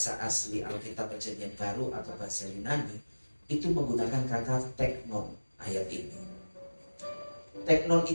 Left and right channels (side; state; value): both; inverted; correlation -1.00